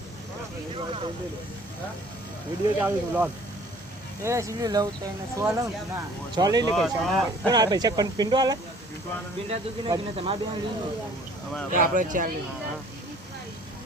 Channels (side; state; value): both; normal; correlation 0.53